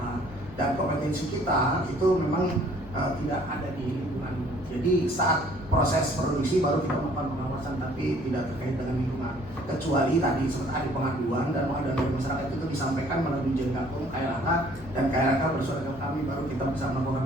Dan kompetensi kita itu memang tidak ada di lingkungan. Jadi saat proses produksi baru kita melakukan pengawasan, tapi tidak terkait dengan lingkungan. Kecuali tadi seperti ada pengaduan dan pengaduan dari masyarakat itu disampaikan melalui Dirjen Gakum KLHK dan KLHK bersuara ke kami, baru kita bisa melakukan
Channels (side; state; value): both; normal; correlation 0.58